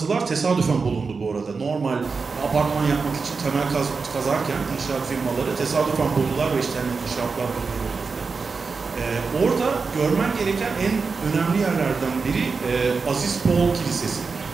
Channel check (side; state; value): left; quieter; 4.7 dB